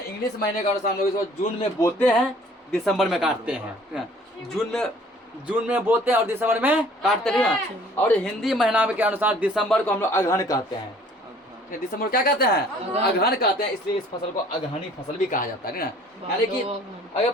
इंग्लिश महीने के अनुसार हम लोग इसको जून में बोते हैं, दिसंबर में काटते हैं। जून में बोते हैं और दिसंबर में काटते हैं ना। और हिंदी महीना के अनुसार दिसंबर को हम लोग अगहन कहते हैं। दिसंबर क्या कहते हैं, अगहन कहते हैं, इसलिए इस फसल को अगहनी फसल भी कहा जाता है ना। यानी कि अगर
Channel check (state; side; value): normal; both; correlation 0.54